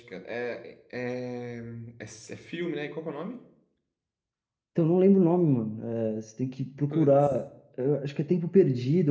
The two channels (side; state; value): both; identical; correlation 1.00